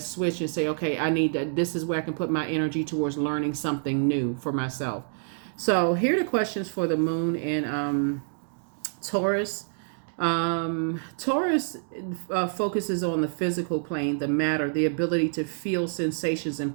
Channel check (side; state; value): left; silent; digital silence